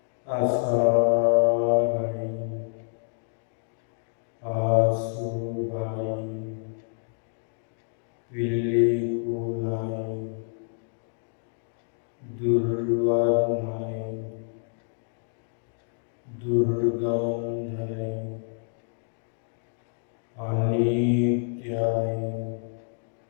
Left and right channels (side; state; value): right; silent; digital silence